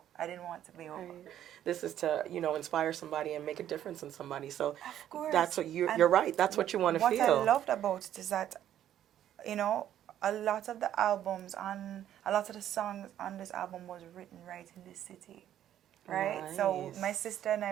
I didn't want to be over. This is to, inspire somebody and make a difference in somebody. So of course. That's what you're right. That's what you want to feel. What I loved about it is that, a lot of the songs on this album was written right in this city. Right? Nice. So my sister and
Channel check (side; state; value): left; quieter; 11.2 dB